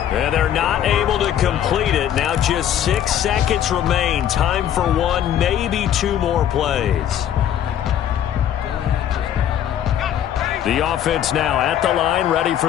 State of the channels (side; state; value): right; quieter; 10.3 dB